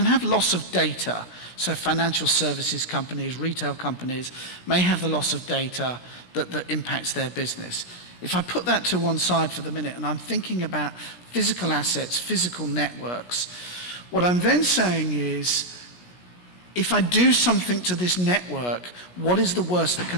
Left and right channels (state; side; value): late; right; 17 ms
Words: have loss of data. So financial services companies, retail companies may have the loss of data that impacts their business. If I put that to one side for the minute and I'm thinking about physical assets, physical networks, what I'm then saying is, if I do something to this network, what is the worst that